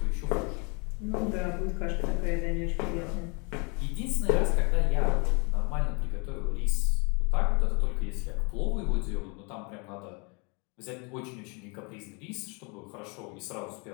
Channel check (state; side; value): quieter; right; 32.2 dB